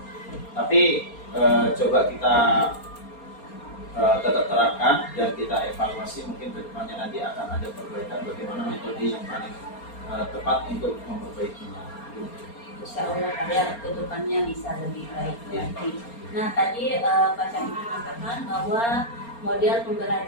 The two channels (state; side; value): late; right; 4.3 ms